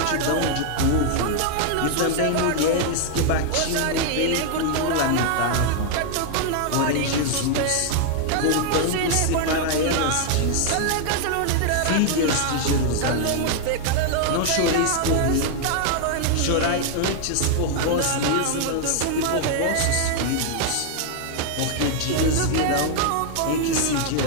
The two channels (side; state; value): both; different; correlation 0.00